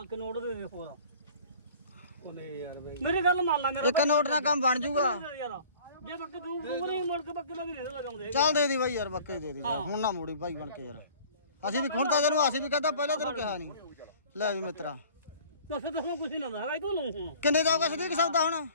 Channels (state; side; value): inverted; both; correlation -0.48